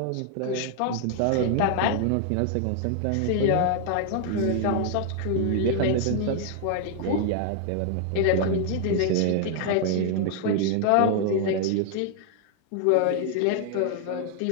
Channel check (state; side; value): different; both; correlation 0.00